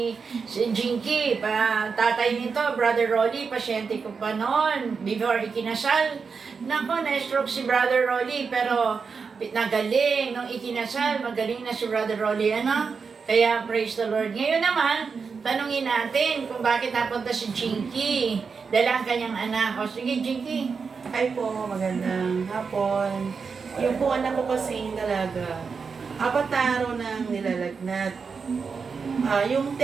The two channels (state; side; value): quieter; left; 5.4 dB